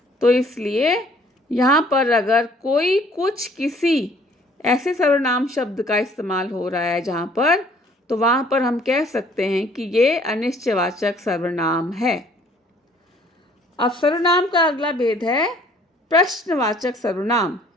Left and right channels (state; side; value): normal; both; correlation 0.58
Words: तो इसलिए यहाँ पर अगर कोई, कुछ, किसी ऐसे सर्वनाम शब्द का इस्तेमाल हो रहा है जहाँ पर, तो वहाँ पर हम कह सकते हैं कि ये अनिश्चयवाचक सर्वनाम है। अब सर्वनाम का अगला भेद है प्रश्नवाचक सर्वनाम,